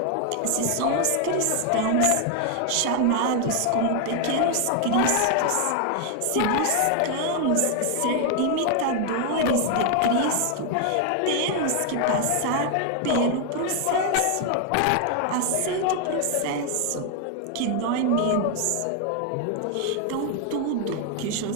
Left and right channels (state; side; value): different; both; correlation 0.00